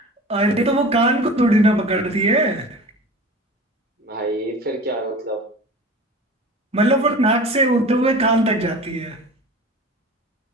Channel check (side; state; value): both; normal; correlation 0.38